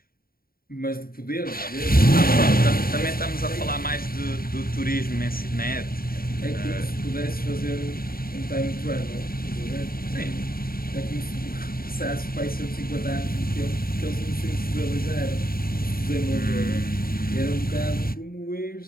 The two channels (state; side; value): late; right; 0.43 ms